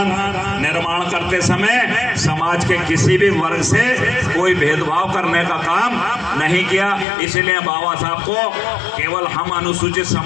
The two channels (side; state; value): right; drops out; at 7.1 s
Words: निर्माण करते समय समाज के किसी भी वर्ग से कोई भेदभाव करने का काम नहीं किया। इसलिए बाबा साहब को केवल हम अनुसूचित